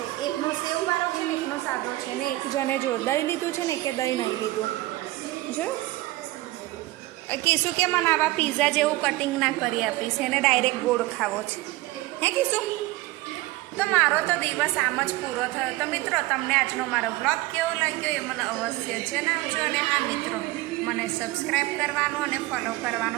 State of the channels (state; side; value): quieter; left; 18.9 dB